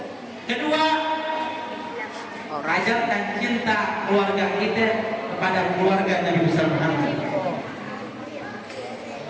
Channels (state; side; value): identical; both; correlation 1.00